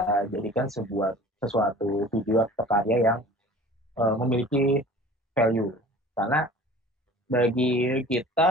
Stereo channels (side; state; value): both; normal; correlation 0.44